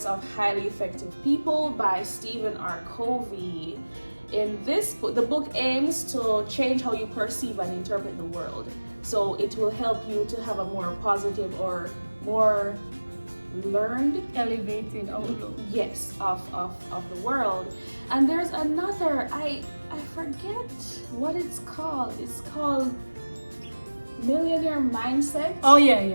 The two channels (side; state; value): both; inverted; correlation -1.00